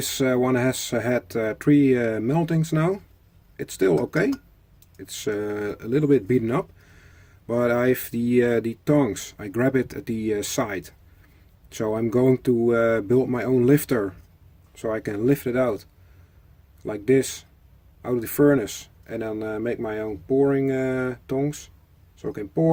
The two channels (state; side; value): identical; both; correlation 1.00